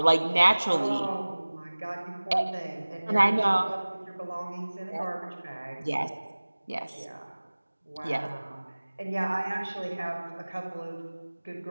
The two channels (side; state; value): both; inverted; correlation -1.00